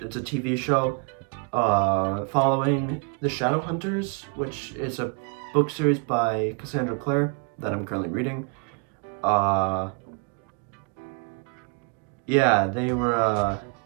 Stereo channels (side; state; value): left; quieter; 33.7 dB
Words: a TV show following the Shadowhunters, which is a book series by Cassandra Clare that I'm currently reading. Yeah, they were